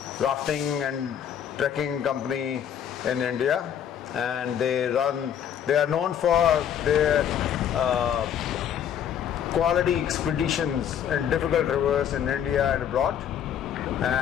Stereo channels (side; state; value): right; quieter; 9.2 dB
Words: rafting and trekking company in India, and they are known for their quality expeditions in difficult rivers in India and abroad.